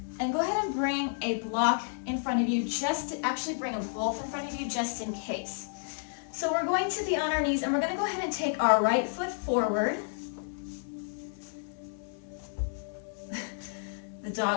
And go ahead and bring a block in front of you, just to actually bring them both in front of you just in case. So we're going to be on our knees, and we're going to go ahead and take our right foot forward. The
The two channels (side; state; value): right; silent; 57 dB below the other